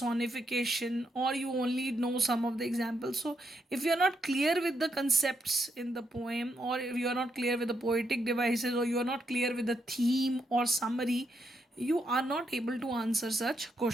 or you only know some of the examples. So if you are not clear with the concepts in the poem, or if you are not clear with the poetic devices, or you are not clear with the theme or summary, you are not able to answer such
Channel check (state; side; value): normal; both; correlation 0.79